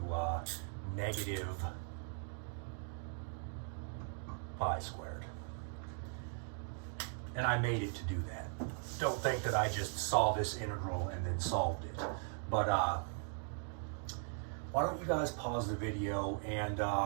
negative pi squared. And I made it to do that. Don't think that I just saw this integral and then solved it. But why don't you guys pause the video, and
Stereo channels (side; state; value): left; silent; 52 dB below the other